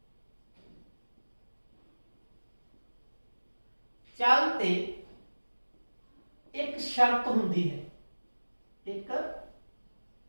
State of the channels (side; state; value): both; inverted; correlation -1.00